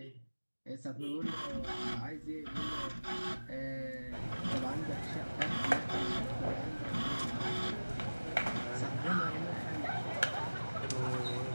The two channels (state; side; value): inverted; both; correlation -1.00